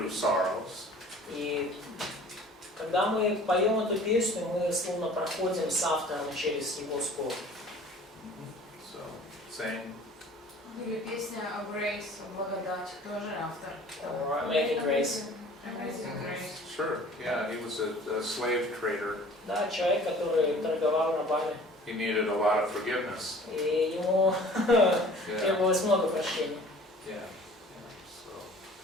sorrows. И когда мы поем эту песню, мы словно проходим с автором через его скорбь. So sing. Или песня о Grace, о благодати, тоже автор. Or Making Grace. Amazing Grace. Sure. Yeah, he was a slave trader. Да, человек, который торговал рабами. He needed a lot of forgiveness. И ему требовалось много прощения. Yeah.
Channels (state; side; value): normal; both; correlation 0.48